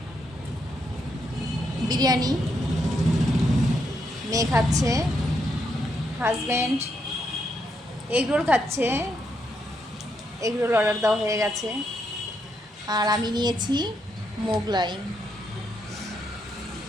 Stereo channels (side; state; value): both; normal; correlation 0.79